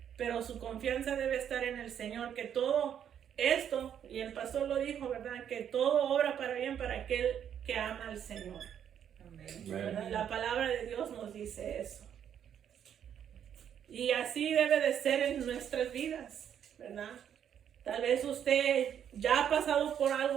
pero su confianza debe estar en el Señor, que todo esto, y el pastor lo dijo, ¿verdad?, que todo obra para bien para aquel que ama al Señor. ¿Verdad? La palabra de Dios nos dice eso. Y así debe de ser en nuestras vidas, ¿verdad? Tal vez usted ya ha pasado por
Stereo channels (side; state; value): left; quieter; 9.1 dB